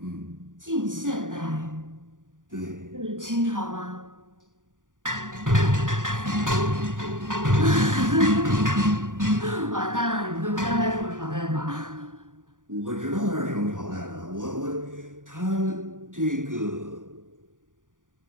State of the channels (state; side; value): late; left; 0.88 ms